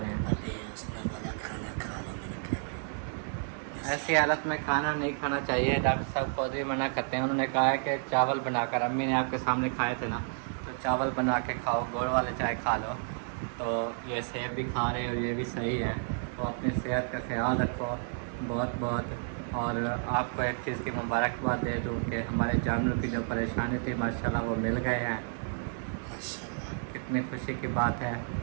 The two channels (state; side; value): silent; left; 57 dB below the other